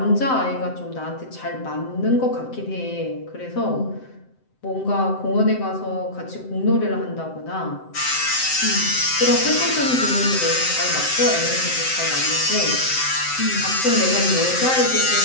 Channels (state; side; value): late; right; 7.7 ms